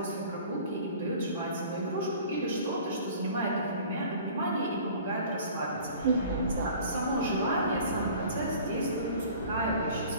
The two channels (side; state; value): both; inverted; correlation -0.46